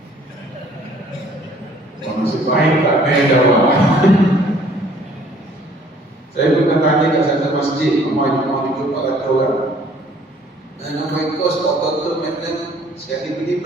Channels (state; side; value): normal; both; correlation 0.57